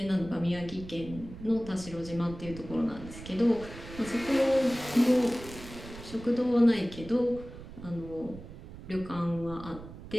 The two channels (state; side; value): noise; right; rumble, 14 dB below the sound